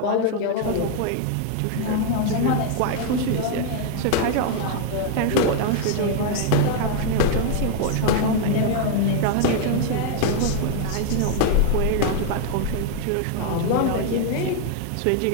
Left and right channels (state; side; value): different; both; correlation 0.00